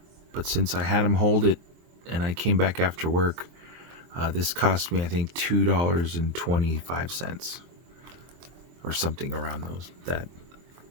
But since I had him hold it and I came back after work, this cost me, I think, $2.25 or something around that.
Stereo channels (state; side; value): late; left; 23 ms